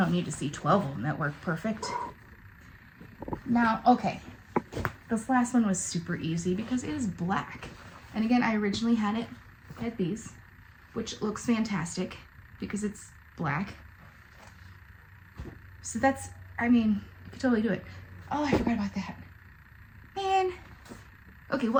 need to see 12 of them that work perfect. Now, okay, this last one was super easy because it is black. And again, I originally had these, which looks fantastic because it's black. So that's, I mean, you could totally do it. Oh, I forgot about that. Man. Okay,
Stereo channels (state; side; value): identical; both; correlation 1.00